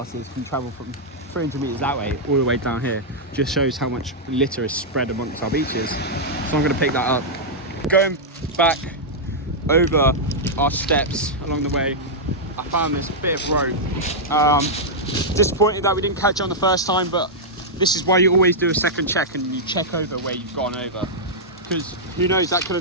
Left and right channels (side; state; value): both; normal; correlation -0.07